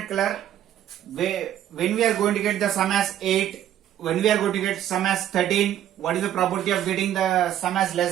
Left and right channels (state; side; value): quieter; left; 11.3 dB